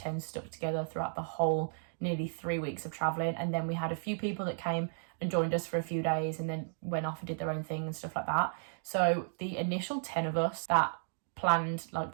stuck together throughout the whole nearly 3 weeks of traveling. And then we had a few people that came and joined us for a few days and then went off and did their own thing and stuff like that. So the initial 10 of us that planned like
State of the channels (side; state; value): left; silent; digital silence